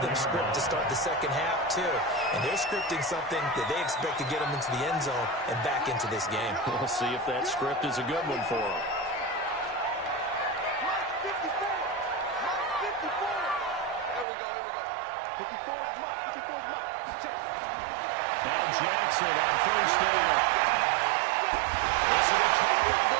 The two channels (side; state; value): left; drops out; at 14.2 s